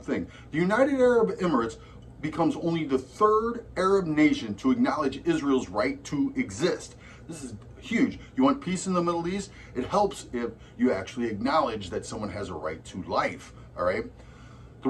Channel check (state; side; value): identical; both; correlation 1.00